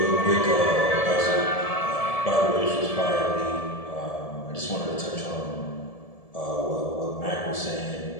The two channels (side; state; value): right; late; 1.7 ms